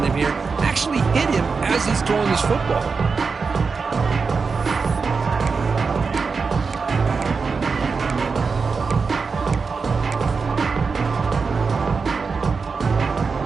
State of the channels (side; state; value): left; quieter; 4.9 dB